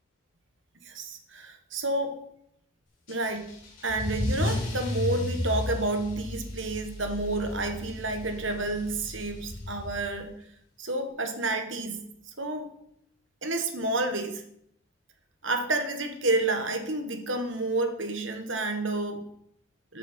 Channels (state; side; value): normal; both; correlation 0.08